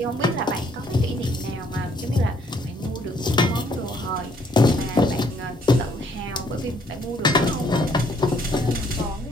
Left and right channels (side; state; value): both; normal; correlation 0.65